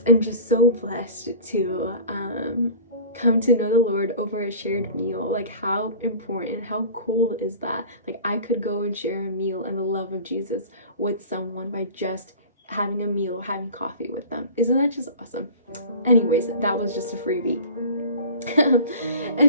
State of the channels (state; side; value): inverted; both; correlation -0.39